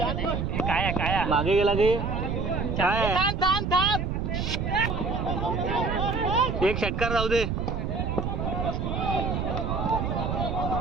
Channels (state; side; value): noise; right; rumble, 1 dB below the sound